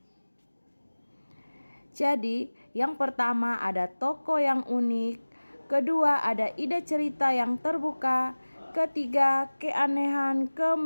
Jadi yang pertama ada tokoh yang unik, kedua ada ide cerita yang terbuka, ketiga keanehan,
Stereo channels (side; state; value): both; inverted; correlation -1.00